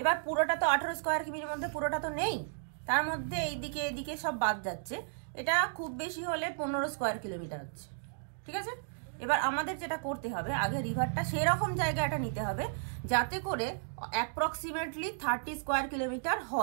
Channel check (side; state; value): left; silent; digital silence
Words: এবার পুরোটা তো 18 স্কোয়ার কিমির মধ্যে পুরোটা তো নেই, তার মধ্যে এইদিকে এদিকে সব বাদ যাচ্ছে। এটা খুব বেশি হলে 15 স্কোয়ার কিলোমিটার হচ্ছে, ঠিক আছে? এবার আমাদের যেটা করতে হবে, আগে রিভারটা সেরকম জায়গাটা নিতে হবে যাতে করে অ্যাপ্রক্সিমেটলি 30 স্কোয়ার কিলোমিটার